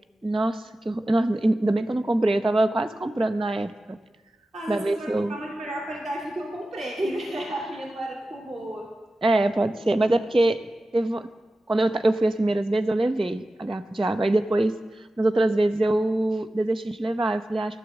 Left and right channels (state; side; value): normal; both; correlation 0.94